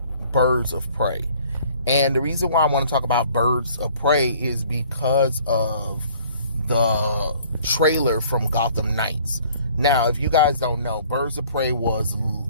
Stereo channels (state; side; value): inverted; both; correlation -0.55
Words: Birds of Prey. And the reason why I want to talk about Birds of Prey is because of the trailer from Gotham Knights. Now, if you guys don't know, Birds of Prey was